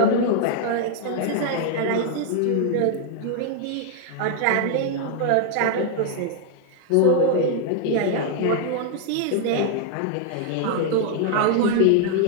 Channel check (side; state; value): both; different; correlation 0.00